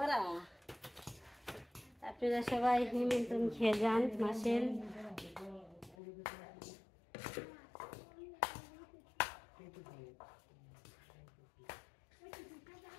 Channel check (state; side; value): drops out; right; at 6.0 s